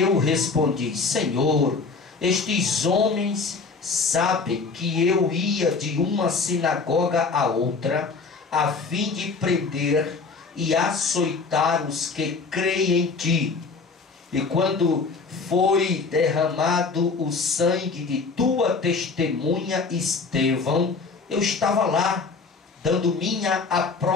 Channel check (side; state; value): right; quieter; 4.5 dB